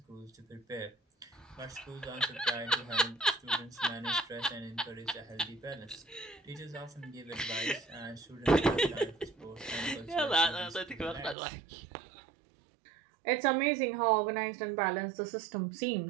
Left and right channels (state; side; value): drops out; left; at 11.4 s